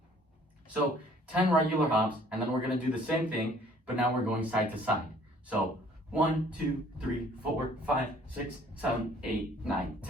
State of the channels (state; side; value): normal; both; correlation 0.57